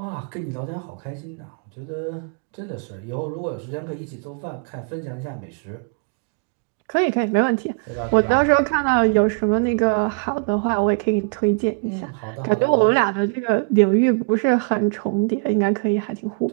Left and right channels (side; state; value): left; quieter; 36.7 dB